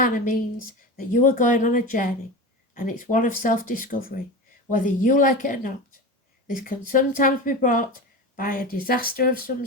means that you are going on a journey, and it's one of self-discovery, whether you like it or not. This can sometimes be brought by a disaster of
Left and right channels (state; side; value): normal; both; correlation 0.27